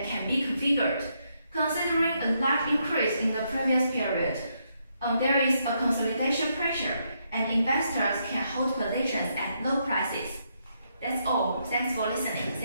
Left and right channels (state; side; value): inverted; both; correlation -0.77